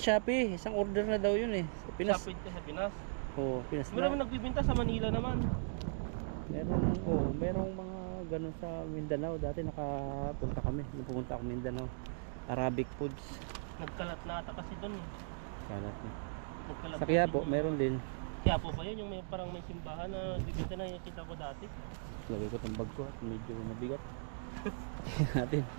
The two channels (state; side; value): silent; left; digital silence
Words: Shopee, isang order na daw yun eh. Sa Pinas. Sapid ka sa Pinas. Oo, Pinas Meron na. nagbibinta sa Manila naman. Merong mga ganun sa Mindanao. Dati nakapunta kami, pumunta ako Mindanao. Arabic foods. Nagkalat na ata kasi doon eh. Kalat na. Nagkalat Sa na Quiapo, din yung- meron din. Quiapo ba yun? Yung may, parang may simbahan na nagbibinta na nakita ko dati. Lagay ko itong bag ko at medyo mabigat. Natin.